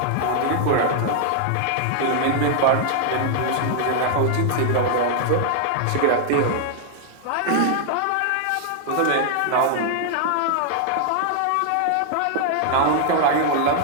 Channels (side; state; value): both; different; correlation 0.00